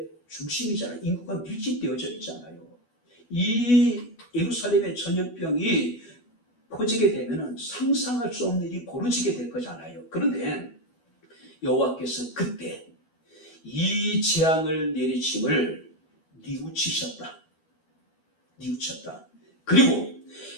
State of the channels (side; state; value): right; late; 12 ms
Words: 중심이잖아요. 인구가 밀집되어져 있잖아요. 이 예루살렘의 전염병이 퍼지게 되면 상상할 수 없는 일이 벌어지게 될 거잖아요. 그런데 여호와께서 그때 이 재앙을 내리침을 뉘우치셨다. 그리고